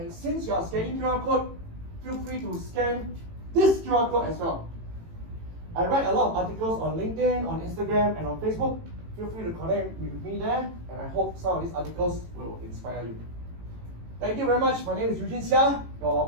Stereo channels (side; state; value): left; late; 18 ms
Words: since you are scanning QR code, feel free to scan this QR code as well. I write a lot of articles on LinkedIn, on Instagram, and on Facebook. Feel free to connect with me there, and I hope some of these articles will inspire you. Thank you very much. My name is Eugene Seah, your